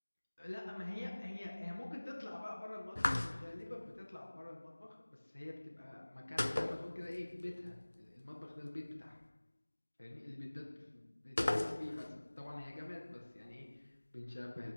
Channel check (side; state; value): both; inverted; correlation -1.00